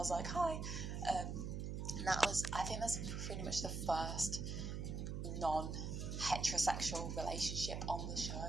like, "Hi." And that was, I think that's pretty much the first non-heterosexual relationship on the show.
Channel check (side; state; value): right; noise; hum, 3 dB below the sound